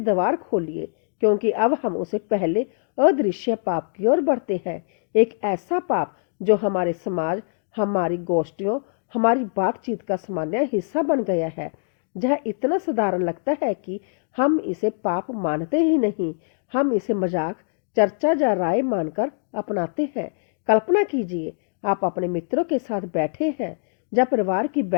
खोलिए, क्योंकि अब हम उसे पहले अदृश्य पाप की ओर बढ़ते हैं। एक ऐसा पाप जो हमारे समाज, हमारी गोष्ठियों, हमारी बातचीत का सामान्य हिस्सा बन गया है। यह इतना साधारण लगता है कि हम इसे पाप मानते ही नहीं, हम इसे मजाक, चर्चा या राय मानकर अपनाते हैं। कल्पना कीजिए, आप अपने मित्रों के साथ बैठे हैं या परिवार की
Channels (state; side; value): silent; right; digital silence